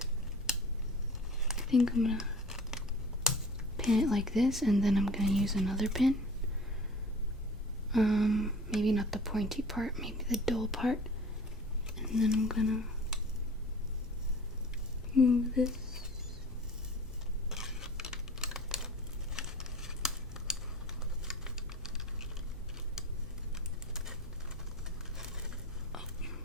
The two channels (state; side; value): normal; both; correlation 0.43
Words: I think I'm gonna pin it like this, and then I'm gonna use another pin. Maybe not the pointy part, maybe the dull part. And then I'm gonna move this. Oh.